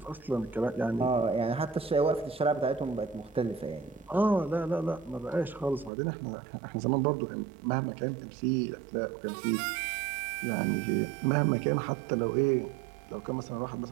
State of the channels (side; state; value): left; drops out; at 5.9 s